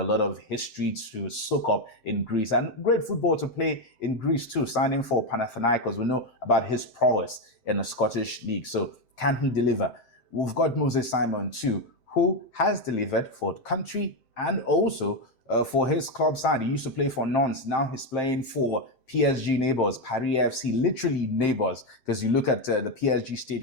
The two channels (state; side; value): late; right; 7.7 ms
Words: lot of history to soak up in Greece and great football to play in Greece too. Signing for Panathinaikos, we know about his prowess in the Scottish League. So can he deliver? We've got Moses Simon too, who has delivered for the country and also for his club side. He used to play for Nantes. Now he's playing for PSG neighbors, Paris FC, literally neighbors, because you look at the PSG